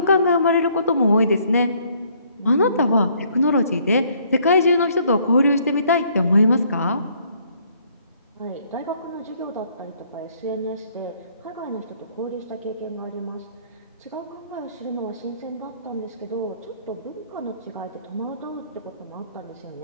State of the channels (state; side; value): inverted; both; correlation -0.64